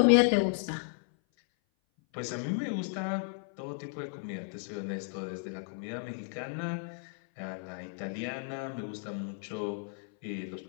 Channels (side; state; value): right; silent; 55 dB below the other